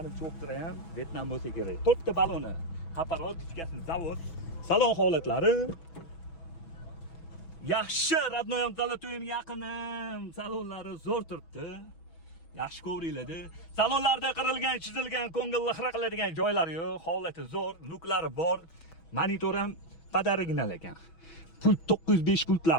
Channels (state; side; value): late; right; 6.1 ms